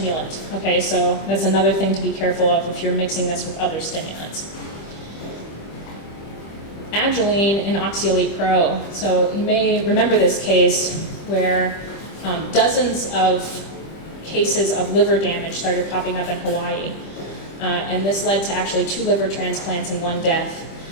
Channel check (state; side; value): late; right; 25 ms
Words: okay, so that's another thing to be careful of if you're mixing this with other stimulants. Agilene and Oxyelite Pro, so you may remember this case where dozens of cases of liver damage started popping up in Hawaii, and this led to actually 2 liver transplants and 1 death